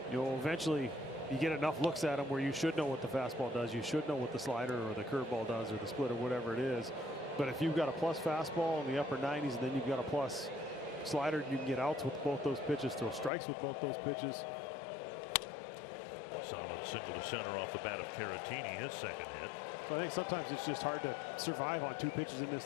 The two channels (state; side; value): drops out; right; at 13.3 s